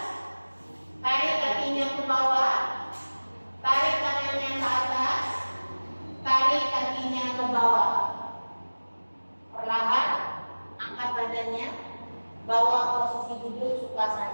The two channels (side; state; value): both; inverted; correlation -1.00